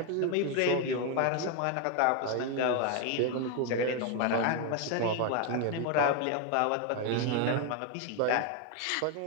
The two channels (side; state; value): both; different; correlation 0.01